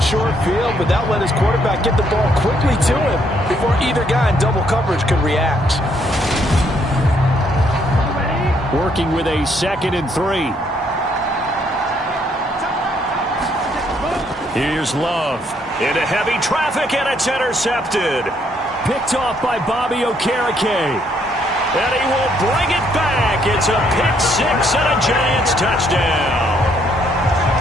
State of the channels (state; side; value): normal; both; correlation 0.70